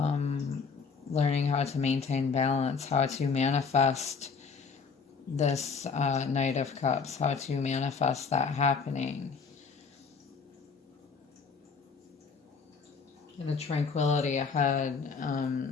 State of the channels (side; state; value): right; quieter; 5.3 dB